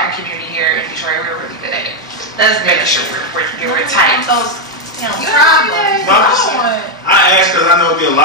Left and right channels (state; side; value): normal; both; correlation 0.03